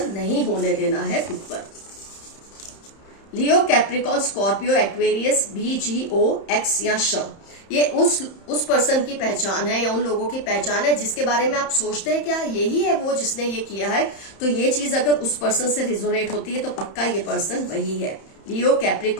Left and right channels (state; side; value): late; right; 31 ms